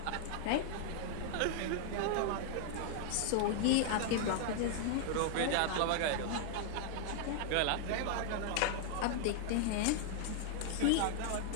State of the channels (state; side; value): different; both; correlation 0.00